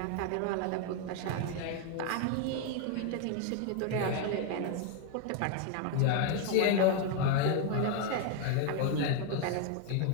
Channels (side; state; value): both; different; correlation 0.01